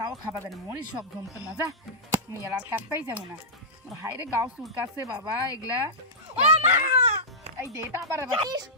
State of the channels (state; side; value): normal; both; correlation -0.14